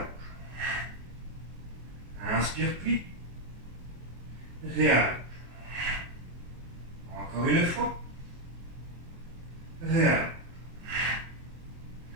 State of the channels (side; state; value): left; late; 24 ms